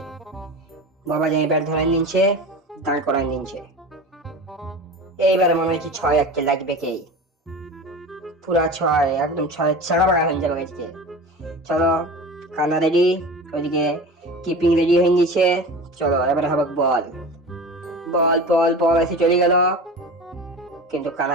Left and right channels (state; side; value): normal; both; correlation 0.32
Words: বাবা যাই ব্যাট ধরে নিচ্ছে, দাঁড় করায় নিচ্ছে। এইবার মনে হচ্ছে 6 একটা লাগবে কে, পুরা 6 একদম 6 ছাড়া বাড়া হয়ে যাবে আজকে। চলো কানা রেডি, ওইদিকে কিপিং রেডি হয়ে গেছে। চলো এবারে হবে বল, বল এসে চলে গেল, কিন্তু